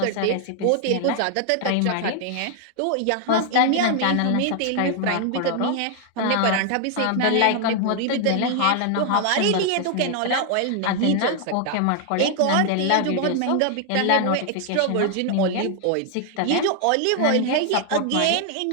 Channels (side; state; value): both; different; correlation 0.00